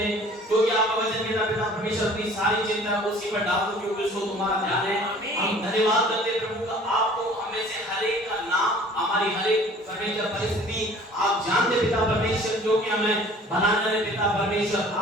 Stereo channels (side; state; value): both; normal; correlation 0.50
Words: हैं क्योंकि आपका वचन कहता पिता परमेश्वर अपनी सारी चिंता उसी पर डाल दो क्योंकि उसको तुम्हारा ध्यान है। हम धन्यवाद करते प्रभु का, आपको हमें से हर एक का नाम, हमारी हर एक परमेश्वर परिस्थिति आप जानते पिता परमेश्वर, जो कि हमें बनाने वाले पिता परमेश्वर